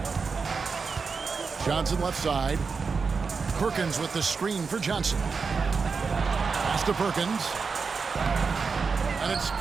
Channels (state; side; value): quieter; left; 5.0 dB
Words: Johnson left side. Perkins with the screen for Johnson. Pass to Perkins. And it's